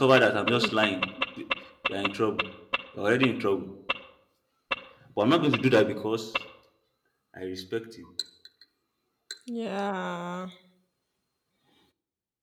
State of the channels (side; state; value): both; identical; correlation 1.00